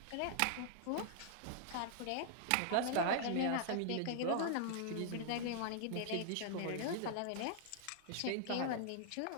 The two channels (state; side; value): different; both; correlation -0.01